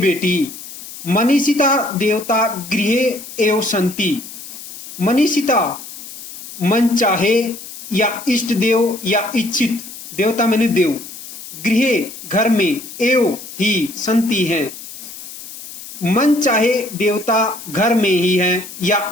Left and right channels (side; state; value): left; noise; hiss, 13 dB below the sound